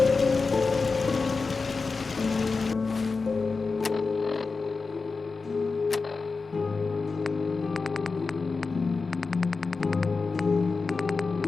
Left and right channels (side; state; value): right; quieter; 4.3 dB